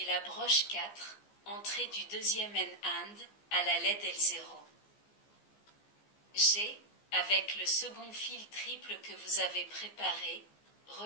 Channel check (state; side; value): late; right; 14 ms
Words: la broche 4, entrée du deuxième NAND, à la LED L0. G. Avec le second fil triple que vous avez préparé,